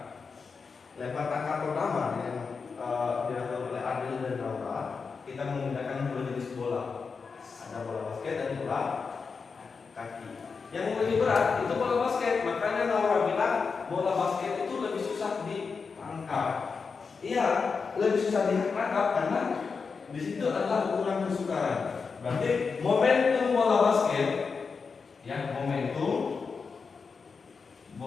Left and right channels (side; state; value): right; quieter; 5.1 dB